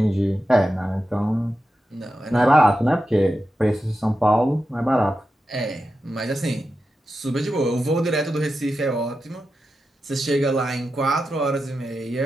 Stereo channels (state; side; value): normal; both; correlation 0.90